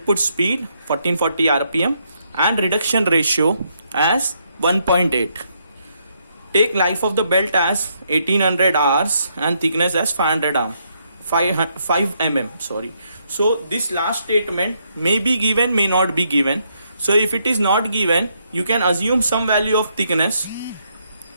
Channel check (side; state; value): both; inverted; correlation -0.75